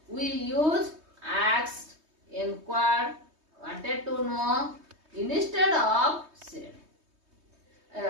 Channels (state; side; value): late; left; 3.2 ms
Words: We use asked, inquired, wanted to know instead of said.